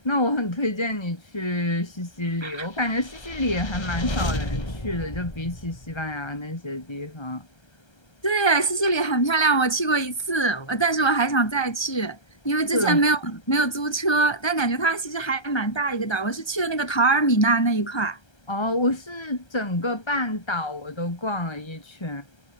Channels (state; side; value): late; right; 1.3 ms